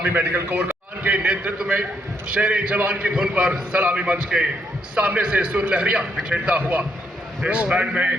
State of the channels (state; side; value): normal; both; correlation 0.75